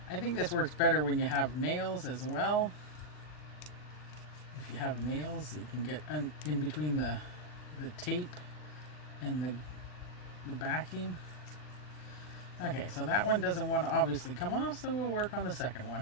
I think this works better when you have nails as well. If you have nails, you can get in between the tape and the backing. Okay, so that one doesn't want to obviously come off, so we'll work on the second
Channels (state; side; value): late; right; 39 ms